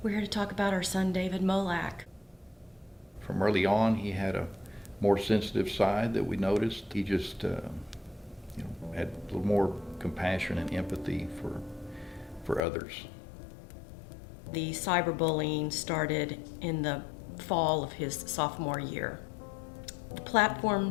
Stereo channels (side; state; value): right; drops out; at 12.6 s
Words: We're here to talk about our son, David Molak. From early on, he had a more sensitive side that we noticed. He just had a little more compassion and empathy for others. The cyberbullying started in the fall of his sophomore year. The